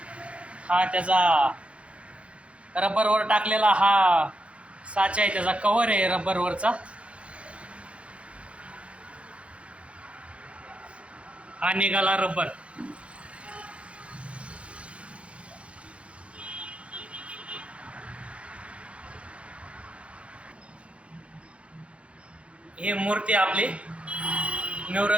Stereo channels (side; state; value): left; late; 0.061 ms